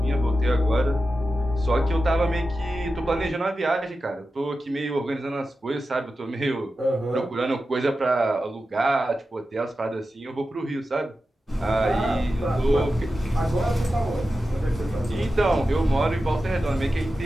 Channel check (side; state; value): both; normal; correlation 0.92